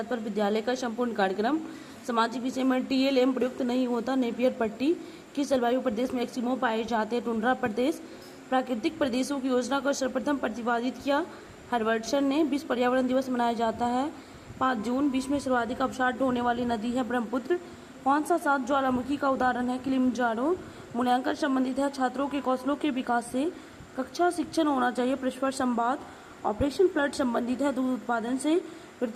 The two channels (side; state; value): both; identical; correlation 1.00